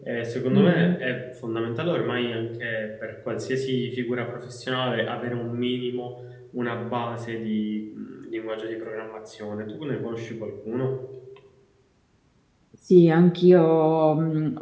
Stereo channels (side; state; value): both; identical; correlation 1.00